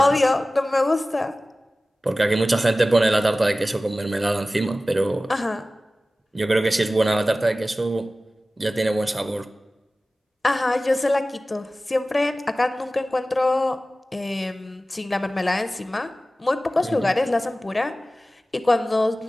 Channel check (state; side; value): normal; both; correlation 0.96